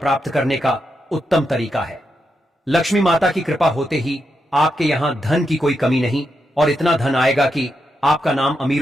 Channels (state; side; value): normal; both; correlation 0.84